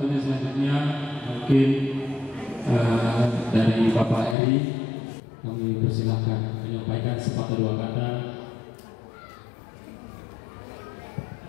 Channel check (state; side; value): drops out; right; at 4.4 s